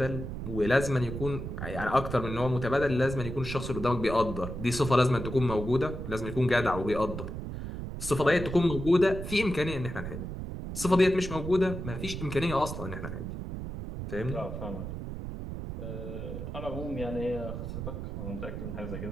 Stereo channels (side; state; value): right; noise; rumble, 6 dB below the sound